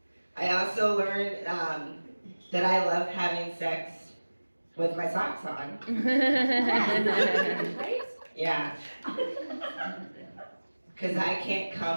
I also learned that I love having sex with my socks on. Yeah. Because I can't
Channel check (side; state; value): both; inverted; correlation -1.00